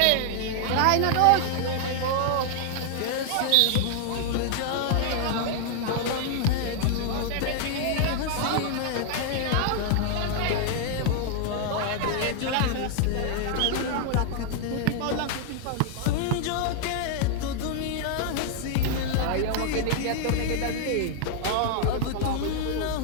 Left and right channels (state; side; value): different; both; correlation 0.00